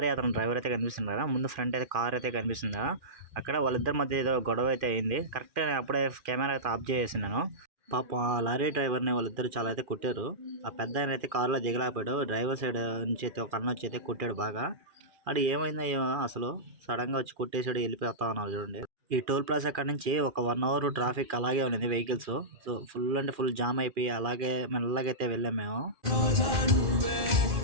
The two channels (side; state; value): left; late; 2.4 ms